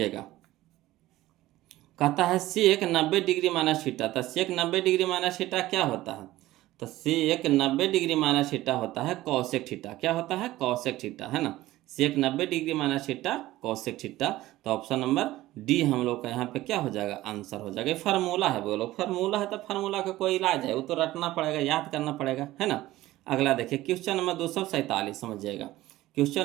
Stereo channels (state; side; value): quieter; left; 16.4 dB